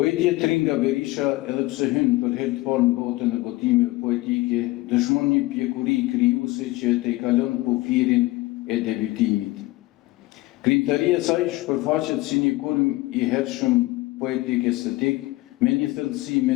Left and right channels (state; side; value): quieter; right; 19.7 dB